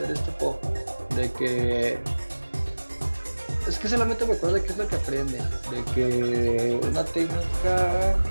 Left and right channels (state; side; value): inverted; both; correlation -1.00